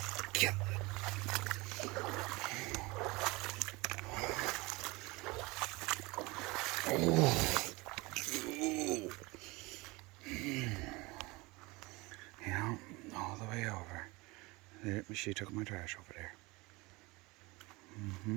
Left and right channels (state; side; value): quieter; left; 23.8 dB